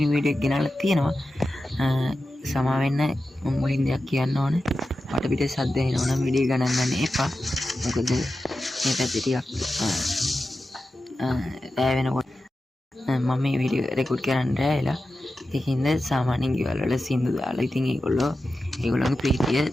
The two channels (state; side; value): normal; both; correlation 0.92